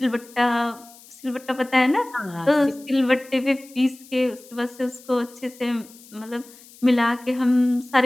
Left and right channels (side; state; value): left; noise; hiss, 23 dB below the sound